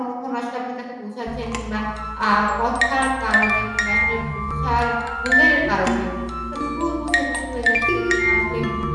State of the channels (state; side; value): identical; both; correlation 1.00